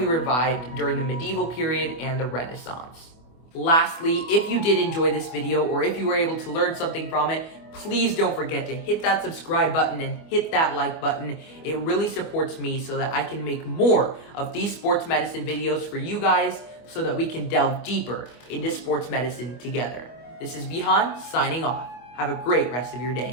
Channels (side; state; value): right; late; 25 ms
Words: revived during the medieval period and the Renaissance. Lastly, if you did enjoy this video, or if you were able to learn something from it, please don't forget to hit that subscribe button and hit that like button. It really supports me so that I can make more of these sports medicine videos for you guys, so that we can delve deeper into sports medicine together. This is Vihan signing off. Have a great rest of your